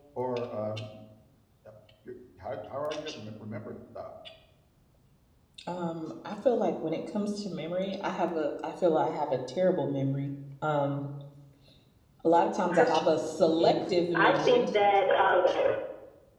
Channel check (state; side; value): identical; both; correlation 1.00